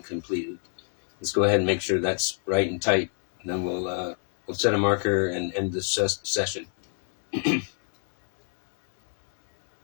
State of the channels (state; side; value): silent; right; 59 dB below the other